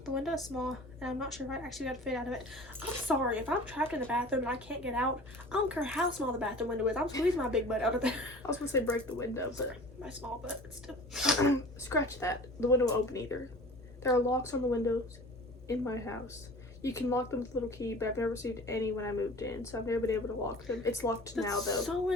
The window is small, and I'm not sure if I actually got to fit out of it. I'm sorry, if I'm trapped in the bathroom and I can't get out, I don't care how small the bathroom window is. I'm squeezing my big butt out of there. I was gonna say break the window, but My small butt, but still. scratch that. The window won't open either. There are locks on the windows in my house. You can lock them with a little key, but I've never received any when I moved in, so I've never been able to lock them. It's locked now, though. That's so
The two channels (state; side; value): normal; both; correlation 0.42